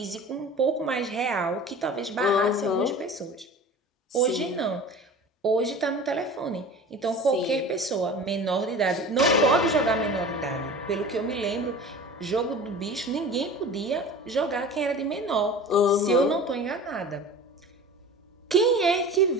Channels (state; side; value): normal; both; correlation 0.38